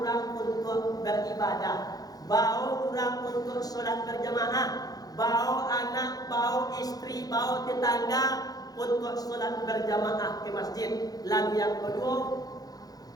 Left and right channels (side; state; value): right; late; 0.18 ms